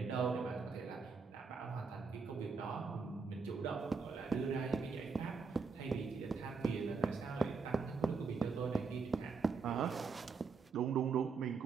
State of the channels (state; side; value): quieter; left; 5.0 dB